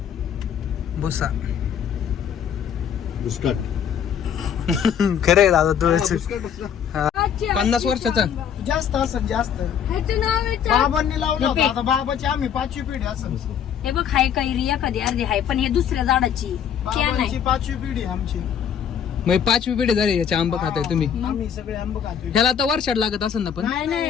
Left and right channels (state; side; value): quieter; right; 8.3 dB